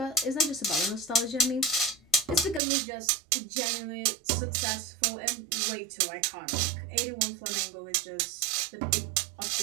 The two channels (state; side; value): drops out; left; at 2.6 s